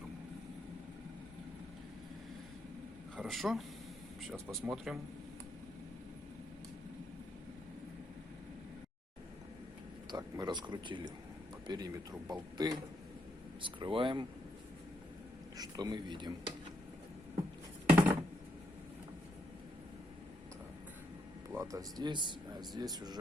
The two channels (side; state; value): both; normal; correlation 0.78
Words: Хорошо. Сейчас посмотрим. Так, мы раскрутили по периметру болты. Скрываем. Что мы видим? Так, плата здесь, а здесь